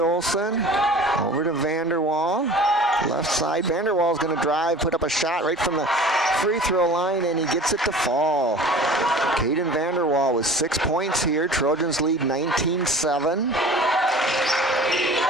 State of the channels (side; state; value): both; normal; correlation 0.42